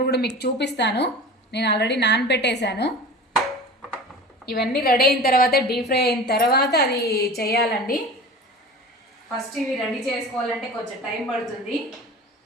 కూడా మీకు చూపిస్తాను. నేను ఆల్రెడీ నానబెట్టేశాను. ఇవన్నీ రెడీ అయిన తర్వాత డీప్ ఫ్రై అయిన తర్వాత అది చేయాలండి. ఫస్ట్ ఇవి రెడీ చేసుకోవాలంటే కొంచెం టైం పడుతుంది.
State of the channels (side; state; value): both; normal; correlation 0.36